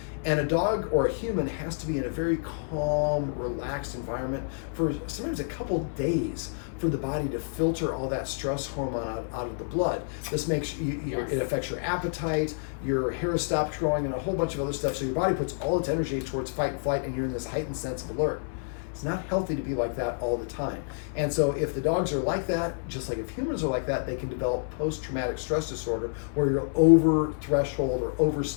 And a dog or a human has to be in a very calm, relaxed environment for sometimes a couple days for the body to filter all that stress hormone out of the blood. This makes it affects your appetite, your hair stops growing, and a whole bunch of other stuff. So your body puts all its energy towards fight and flight, and you're in this heightened sense of alert. It's not healthy to be like that all the time. And so if the dogs are like that, just like if humans are like that, they can develop post-traumatic stress disorder, where you're over threshold or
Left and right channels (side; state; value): right; silent; 59 dB below the other